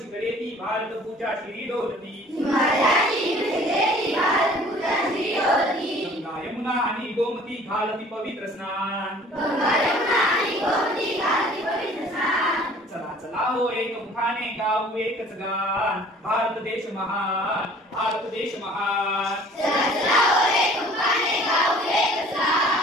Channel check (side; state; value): both; normal; correlation 0.51